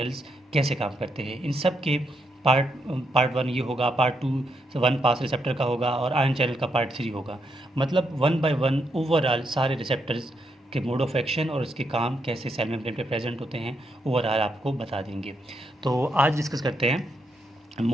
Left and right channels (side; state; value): both; normal; correlation 0.79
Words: कैसे काम करते हैं। इन सब के पार्ट पार्ट 1 ये होगा, पार्ट 2 1 पास रिसेप्टर का होगा, और आयन चैनल का पार्ट 3 होगा। मतलब 1 बाय 1 ओवरऑल सारे रिसेप्टर्स के मोड ऑफ एक्शन और उसके काम कैसे सेल मेम्ब्रेन पे प्रेजेंट होते हैं ओवरऑल आपको बता देंगे। तो आज डिस्कस करते हैं